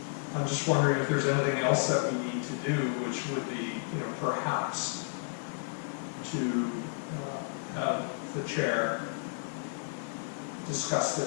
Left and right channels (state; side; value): silent; right; 56 dB below the other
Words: I'm just wondering if there's anything else that we need to do, which would be, you know, perhaps to have the chair discuss